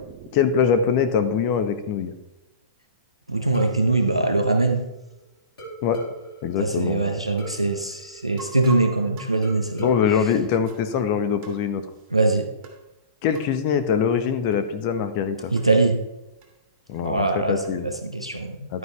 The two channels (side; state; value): both; inverted; correlation -0.42